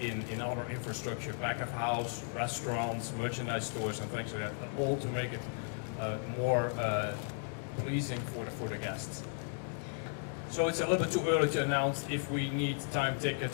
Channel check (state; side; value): silent; right; 54 dB below the other